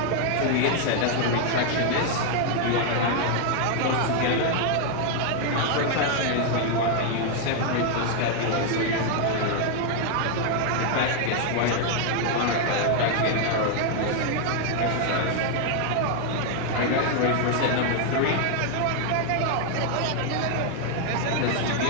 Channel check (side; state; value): both; different; correlation 0.00